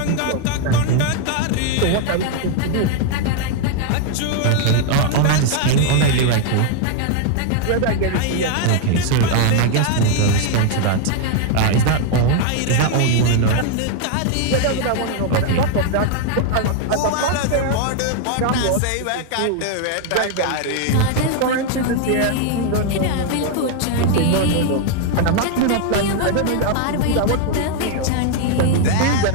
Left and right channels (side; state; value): both; different; correlation 0.00